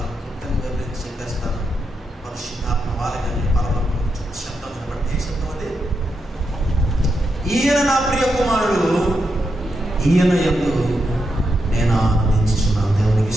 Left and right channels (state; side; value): normal; both; correlation 0.84